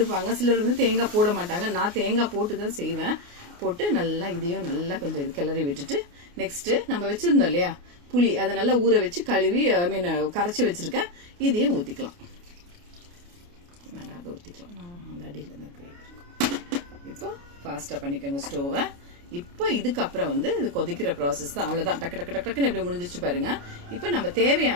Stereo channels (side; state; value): left; late; 28 ms